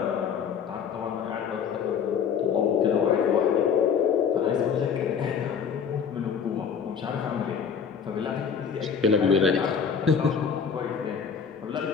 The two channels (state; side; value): quieter; right; 6.9 dB